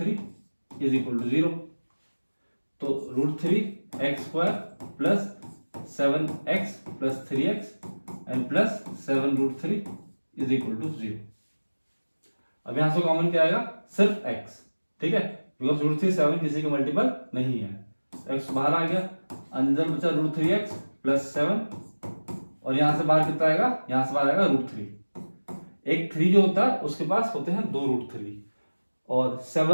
is equal to 0। तो √3x² plus 7x plus 3x and plus 7√3 is equal to 0। अब यहां से कॉमन क्या आएगा, सिर्फ x, ठीक है, बिकॉज √3 7 किसी का मल्टीपल नहीं है, x बाहर आ गया, अंदर बचा √3x प्लस 7, और यहां से बाहर कितना आएगा, यहां से बाहर आएगा √3। एक 3 जो होता है उसके पास होते हैं 2 √3, और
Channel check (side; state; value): both; inverted; correlation -1.00